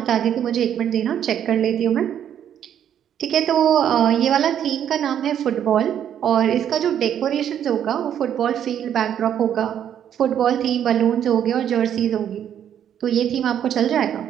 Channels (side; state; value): left; quieter; 9.6 dB